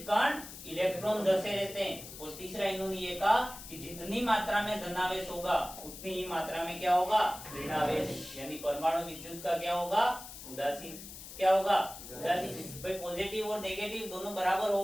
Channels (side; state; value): left; noise; hiss, 13 dB below the sound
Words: कण इलेक्ट्रॉन धसे रहते हैं। और तीसरा इन्होंने ये कहा कि जितनी मात्रा में धनावेश होगा उतनी ही मात्रा में क्या होगा? ऋणावेश। यानी परमाणु विद्युत का क्या होगा? उदासीन। क्या होगा? उदासीन। भाई पॉजिटिव और नेगेटिव दोनों बराबर हो